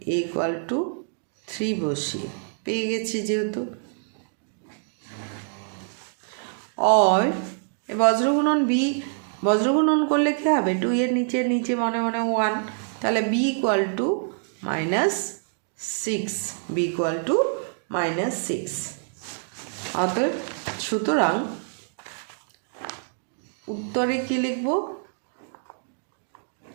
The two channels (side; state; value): left; silent; digital silence